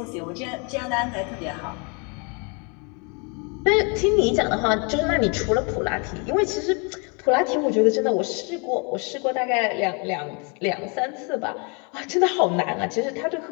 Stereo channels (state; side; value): quieter; right; 34.0 dB